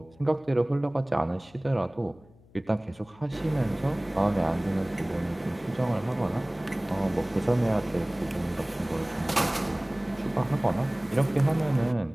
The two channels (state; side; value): noise; left; hum, 27 dB below the sound